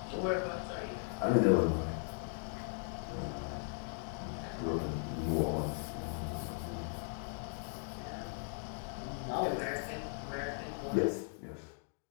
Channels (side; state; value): right; silent; 52 dB below the other